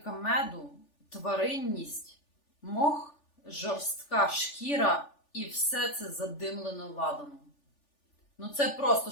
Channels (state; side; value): late; right; 3.4 ms